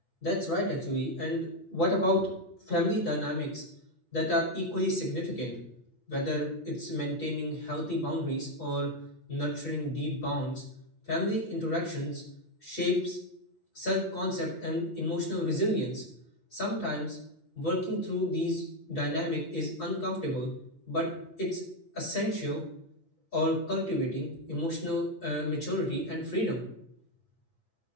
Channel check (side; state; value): right; late; 8.5 ms